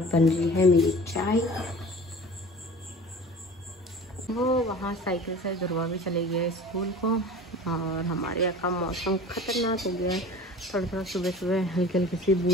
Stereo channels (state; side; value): normal; both; correlation 0.40